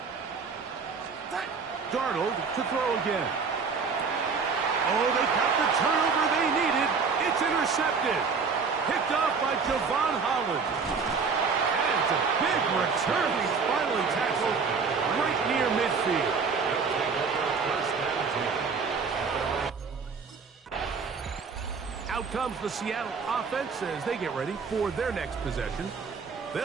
Darnold to throw again. Oh, they got the turnover they needed. It's intercepted. Picked off by Javon Holland. And it's a big return. He's finally tackled right near midfield. Out comes the Seattle offense as they get ready for their next possession.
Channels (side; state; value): left; quieter; 5.2 dB